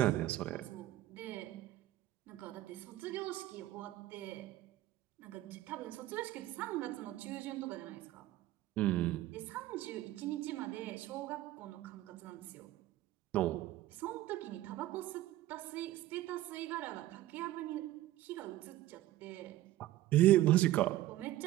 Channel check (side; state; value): left; quieter; 15.1 dB